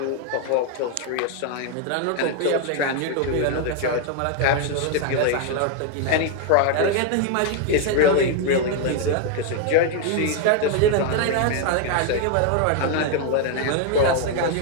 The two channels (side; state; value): both; different; correlation 0.01